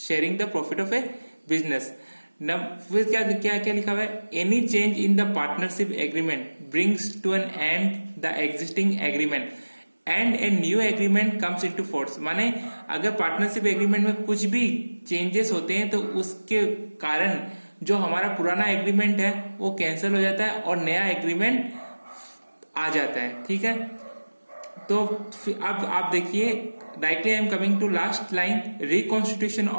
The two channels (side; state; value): both; inverted; correlation -1.00